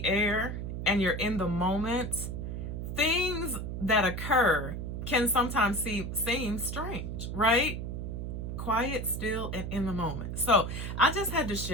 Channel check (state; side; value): noise; right; hum, 5 dB below the sound